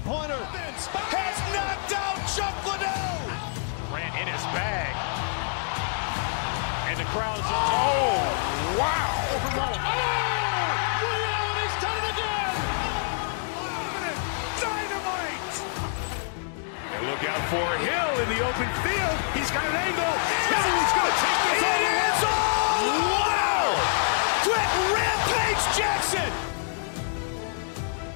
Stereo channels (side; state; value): right; silent; digital silence